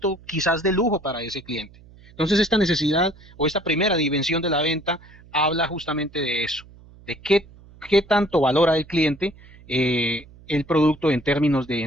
quizás de lujo para ese cliente. Entonces esta necesidad o esta primera dimensión de la venta habla justamente de eso, de qué tanto valora el cliente el producto en términos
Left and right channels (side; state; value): right; noise; hum, 23 dB below the sound